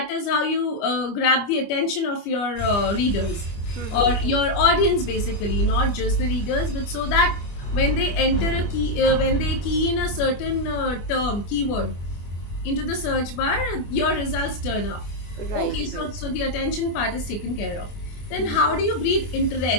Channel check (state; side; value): late; right; 25 ms